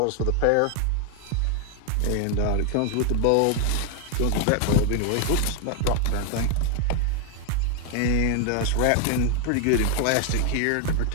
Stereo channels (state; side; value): different; both; correlation 0.00